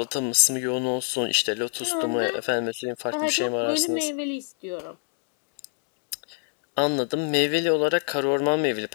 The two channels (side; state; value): right; silent; 61 dB below the other